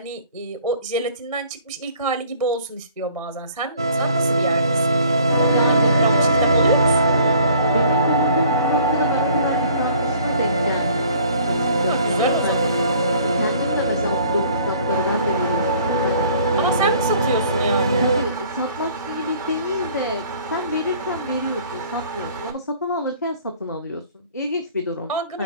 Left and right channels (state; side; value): inverted; both; correlation -0.55